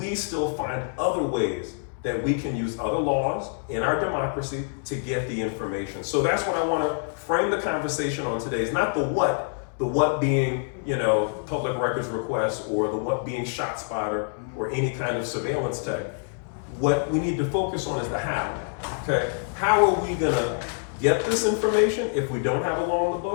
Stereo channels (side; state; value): right; silent; digital silence